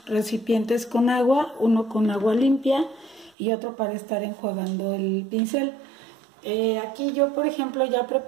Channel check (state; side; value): drops out; left; at 3.3 s